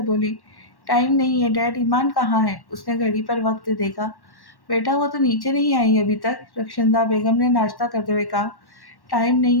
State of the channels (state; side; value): late; right; 1.1 ms